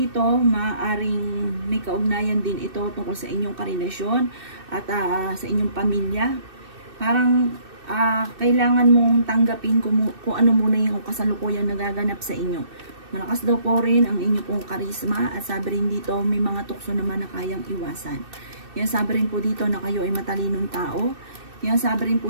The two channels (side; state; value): left; late; 2.6 ms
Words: maaaring may kaugnayan din ito tungkol sa inyong karelasyon at sa inyong pamilya. Parang kailangan mong tanggapin kung ano muna yung kasalukuyang nagaganap sa inyo. Malakas daw po rin ang inyo pong karisma at sabi rin dito may mga tukso naman na kayang iwasan. Yan, sabi rin po dito na kayo ay matalinong tao. Yan, sabi rin